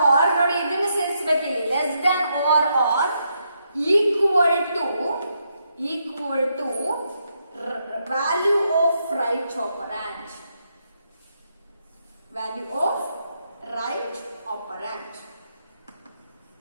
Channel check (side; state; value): both; inverted; correlation -0.79